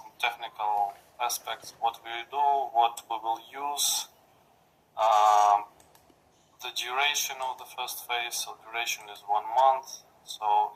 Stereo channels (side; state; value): both; identical; correlation 1.00